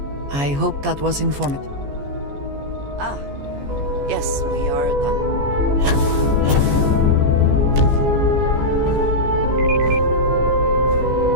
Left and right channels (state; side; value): late; left; 14 ms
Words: I hope that was informative. Ah, yes, we are done.